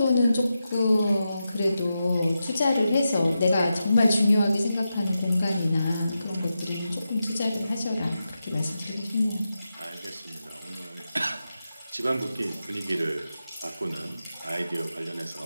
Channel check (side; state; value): both; inverted; correlation -0.90